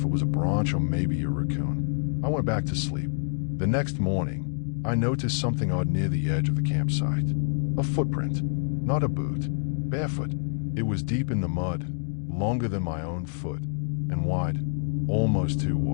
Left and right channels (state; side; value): silent; right; 57 dB below the other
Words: it was a branch or maybe a raccoon. I went back to sleep. The next morning, I noticed something odd near the edge of the campsite. A footprint. Not a boot. Barefoot. It was deep in the mud, longer than my own foot, and wide. Almost too